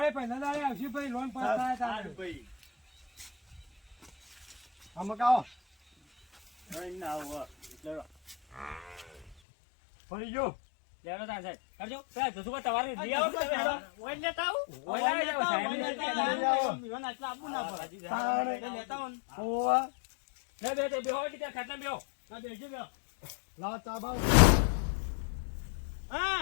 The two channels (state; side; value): drops out; right; at 9.3 s